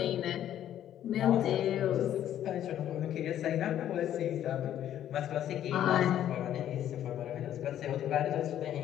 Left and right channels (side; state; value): right; quieter; 11.2 dB